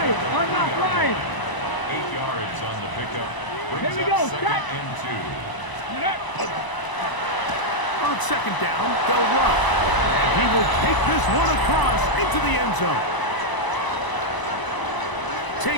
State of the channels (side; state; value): right; late; 1.0 ms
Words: I'm not lying. 8 yards on the pickup. Brings Here we up go. 2nd and 2. On 2nd down, they'll run. And he will take this one across into the end zone.